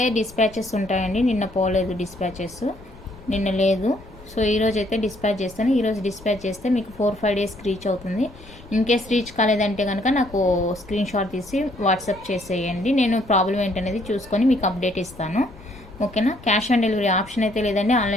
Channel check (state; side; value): noise; left; rumble, 20 dB below the sound